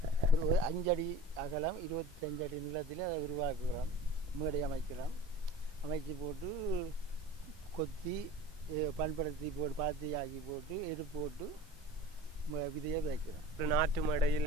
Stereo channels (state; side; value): normal; both; correlation 0.39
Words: ஒரு 5 அடி அகலம் 25 அடி நிலத்தில் அதை உருவாக்குகிறோம். மேடை அமைக்கிறோம். அமைச்சு போட்டு கொத்தி பண்படுத்தி போட்டு பாத்தி ஆக்கி போட்டு எரு போட்டு விதையை வைக்கிறோம். நாட்டு